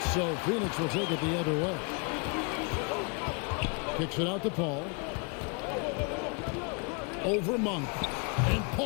So Phoenix will take it the other way. Kicks it out to Paul. Over Monk. And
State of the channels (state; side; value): quieter; right; 34.3 dB